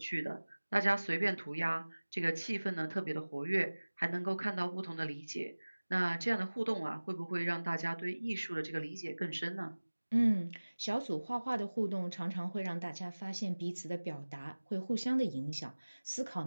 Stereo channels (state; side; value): inverted; both; correlation -1.00